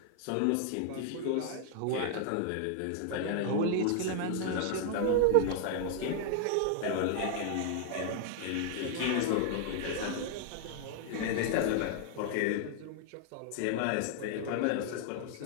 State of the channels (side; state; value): both; different; correlation 0.00